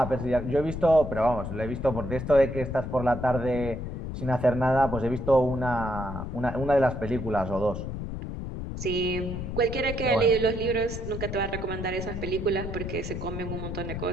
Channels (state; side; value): noise; left; rumble, 6 dB below the sound